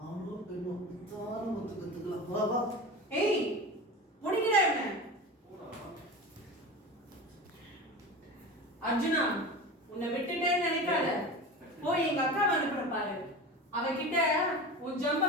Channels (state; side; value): normal; both; correlation 0.30